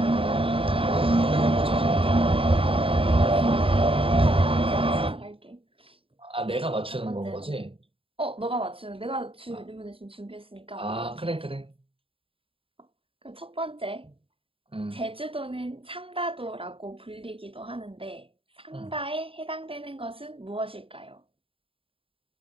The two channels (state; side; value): late; left; 0.27 ms